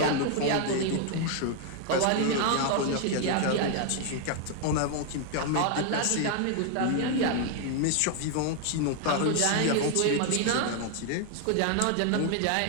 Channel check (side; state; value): both; different; correlation 0.00